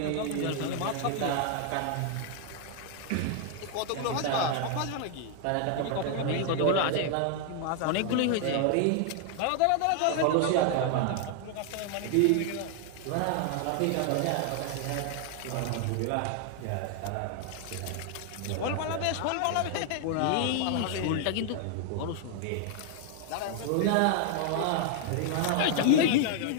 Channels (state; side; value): different; both; correlation 0.00